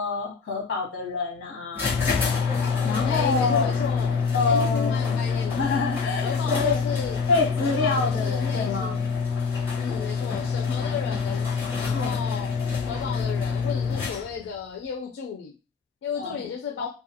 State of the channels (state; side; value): quieter; right; 4.8 dB